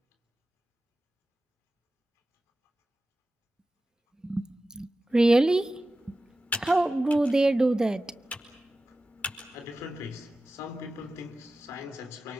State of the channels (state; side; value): normal; both; correlation 0.95